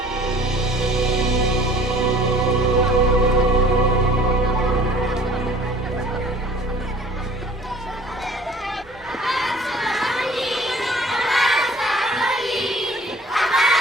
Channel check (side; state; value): both; normal; correlation 0.50